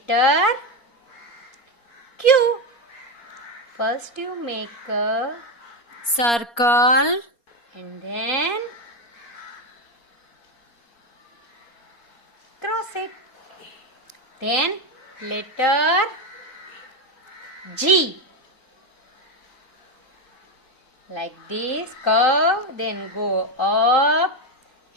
Q. First you make a circle and then cross it. Then letter G. Like this, curve, then go up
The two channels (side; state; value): right; late; 4.3 ms